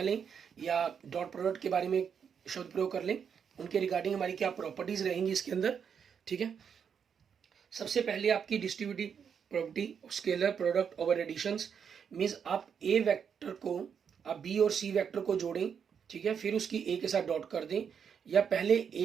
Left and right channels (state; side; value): quieter; left; 7.2 dB